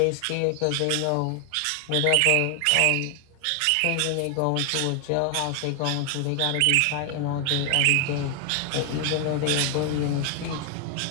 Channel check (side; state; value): both; different; correlation 0.00